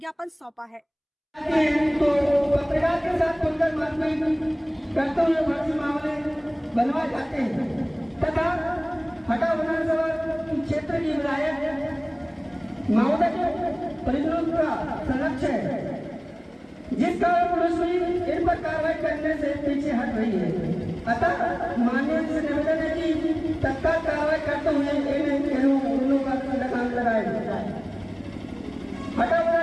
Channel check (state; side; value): identical; both; correlation 1.00